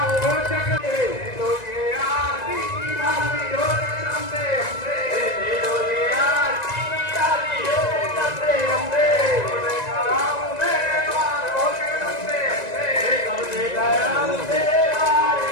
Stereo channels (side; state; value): right; late; 1.9 ms